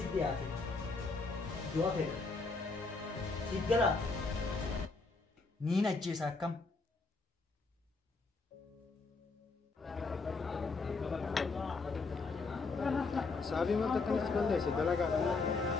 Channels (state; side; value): quieter; right; 3.9 dB